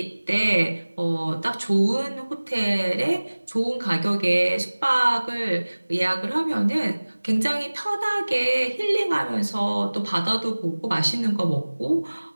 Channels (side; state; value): both; inverted; correlation -1.00